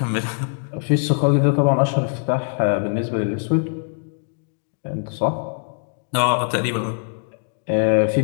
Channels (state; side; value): silent; right; digital silence